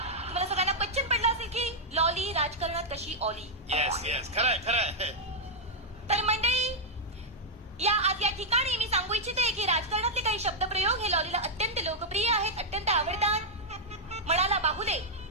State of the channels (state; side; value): normal; both; correlation -0.03